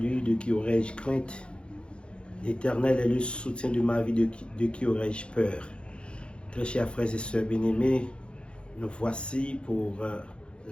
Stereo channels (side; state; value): right; late; 0.056 ms